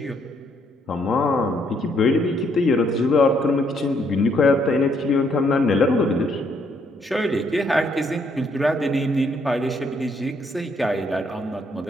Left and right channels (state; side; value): normal; both; correlation 0.71